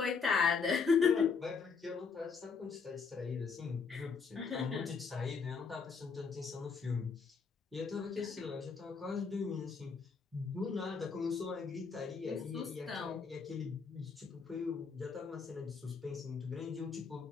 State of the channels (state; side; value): quieter; right; 5.4 dB